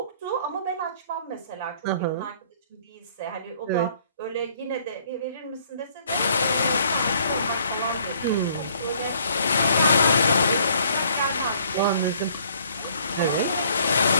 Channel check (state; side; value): inverted; both; correlation -0.61